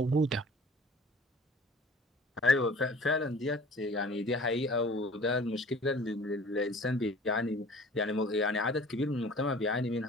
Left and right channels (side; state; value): both; normal; correlation 0.47